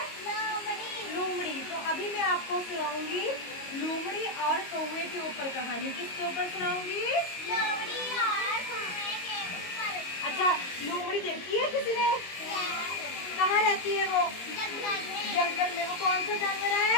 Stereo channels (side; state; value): right; late; 22 ms